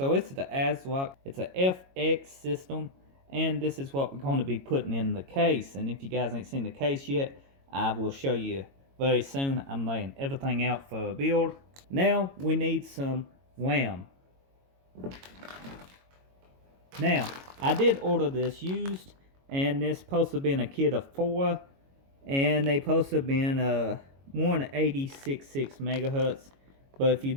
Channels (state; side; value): late; left; 22 ms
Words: it's the ASRock, it's a FX system, and this is what we're going to be putting in the case. And if you guys ain't seen the case yet, I will show you very soon. I'm laying everything out for a build. Now we need some RAM. Now, I did order this used, and this supposed to be in a kit of 4, and they supposed to be in a 186.6 megahertz. But if you